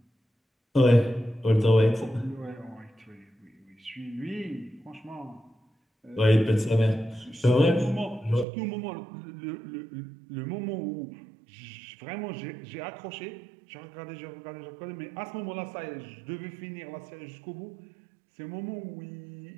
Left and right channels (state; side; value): drops out; left; at 8.5 s